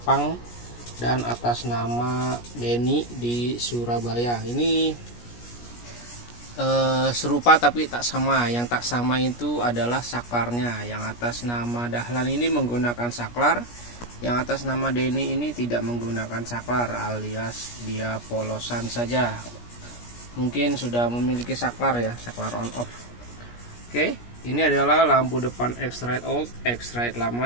dan atas nama Denny di Surabaya. Ini serupa tapi tak sama. Yang tak sama itu adalah saklarnya. Yang atas nama Dahlan ini menggunakan saklar, yang atas nama Denny ini tidak menggunakan saklar, alias dia polosan saja. Mungkin sudah memiliki saklar ya, saklar on off. Oke, ini adalah lampu depan X-Rite old, X-Rite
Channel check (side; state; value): right; late; 17 ms